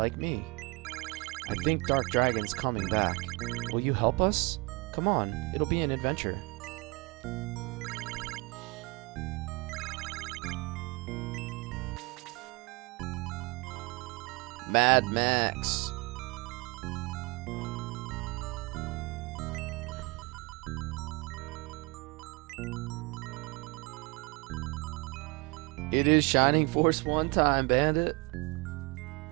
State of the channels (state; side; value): quieter; left; 27.2 dB